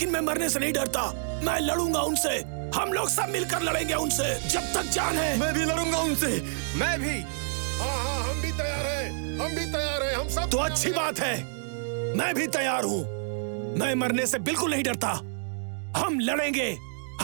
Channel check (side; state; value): left; silent; digital silence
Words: मैं मरने से नहीं डरता। मैं लड़ूंगा उनसे। हम लोग सब मिलकर लड़ेंगे उनसे जब तक जान है। मैं भी लड़ूंगा उनसे। मैं भी। हाँ, हम भी तैयार हैं। हम भी तैयार हैं। हम सब तो अच्छी बात है, मैं भी तैयार हूं। मैं मरने से बिल्कुल नहीं डरता। हम